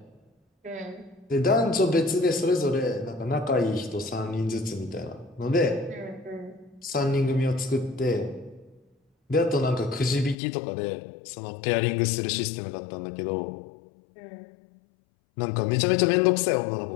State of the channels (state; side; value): drops out; right; at 10.4 s